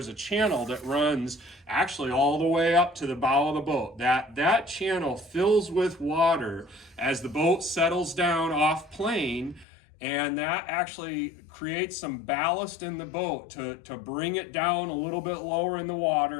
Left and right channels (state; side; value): drops out; right; at 9.7 s